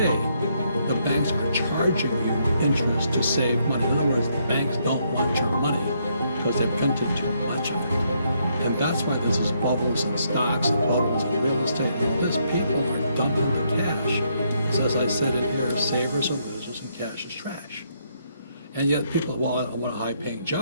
the banks are charging you interest to save money. In other words, the banks don't want your money because they printed too much of it. And that's why there's these bubbles in stocks and bubbles in real estate. And these people are dumping the cash. Because as I said in here, savers are losers and cash is trash. And yet people, well, I want a high-paying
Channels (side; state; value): both; inverted; correlation -0.74